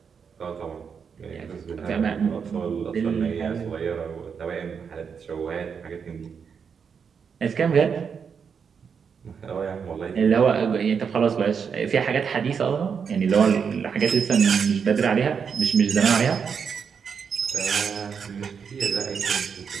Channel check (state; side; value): quieter; left; 6.5 dB